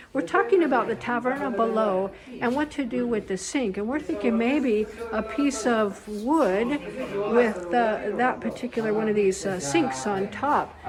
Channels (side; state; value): both; identical; correlation 1.00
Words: We're talking about the taverna below and what to do with the sink. And we're thinking maybe a piece of wood with that particular one of these sinks on top.